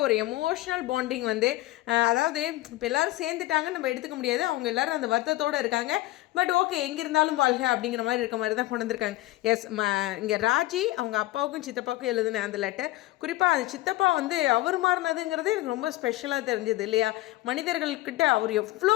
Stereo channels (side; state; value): right; quieter; 17.8 dB